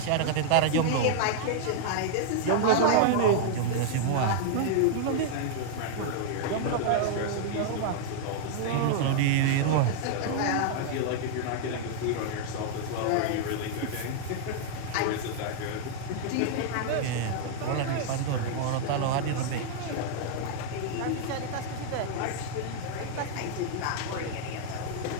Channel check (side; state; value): both; different; correlation -0.01